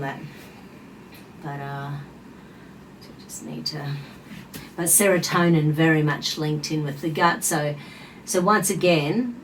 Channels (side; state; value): both; identical; correlation 1.00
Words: But just need to. But serotonin very much linked in with the gut. So once again,